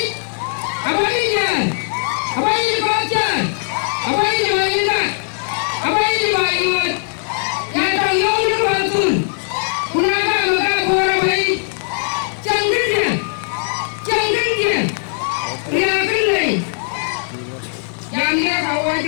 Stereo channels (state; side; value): silent; right; 64 dB below the other